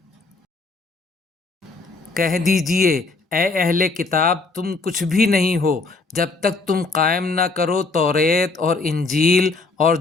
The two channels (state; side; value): quieter; right; 3.7 dB